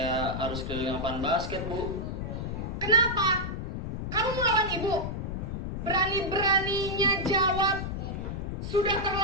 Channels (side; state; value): left; noise; rumble, 4 dB below the sound